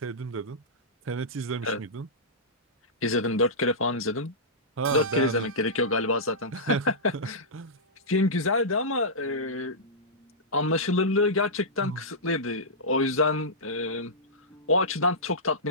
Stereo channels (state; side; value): normal; both; correlation -0.15